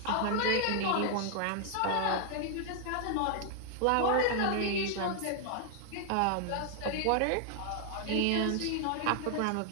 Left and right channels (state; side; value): different; both; correlation 0.00